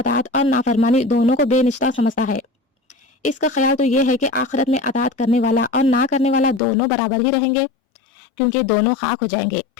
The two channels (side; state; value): right; drops out; at 6.6 s